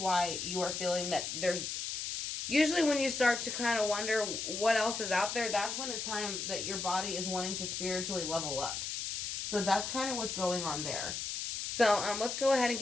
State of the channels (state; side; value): noise; left; hiss, 4 dB below the sound